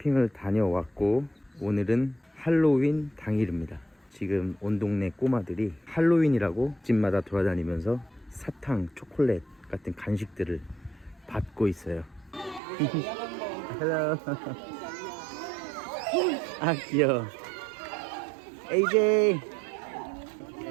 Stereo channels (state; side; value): drops out; left; at 12.6 s